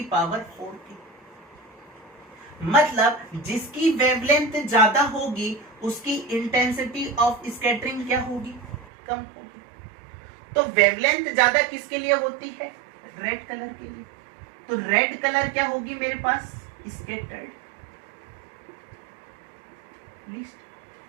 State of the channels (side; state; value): left; drops out; at 8.8 s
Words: पावर 4 की। मतलब जिसकी वेवलेंथ ज्यादा होगी उसकी इंटेंसिटी ऑफ स्कैटरिंग क्या होगी, कम होगी। तो वेवलेंथ ज्यादा किसके लिए होती है, रेड कलर के लिए। तो रेड कलर क्या होगी मेरे पास, स्कैटर्ड लीस्ट।